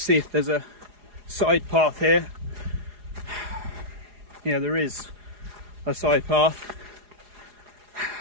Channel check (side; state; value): left; late; 4.8 ms